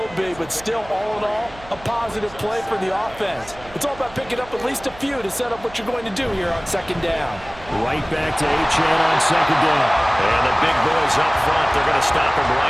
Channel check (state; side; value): noise; right; hum, 20 dB below the sound